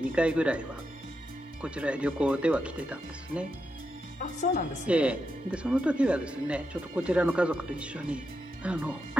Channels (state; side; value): normal; both; correlation 0.85